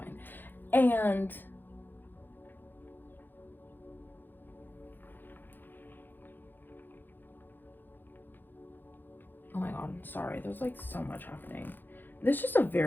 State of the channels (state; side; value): late; right; 0.092 ms